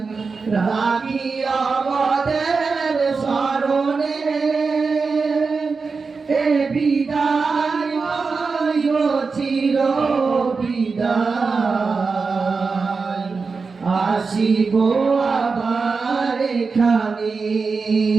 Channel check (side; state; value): left; quieter; 4.7 dB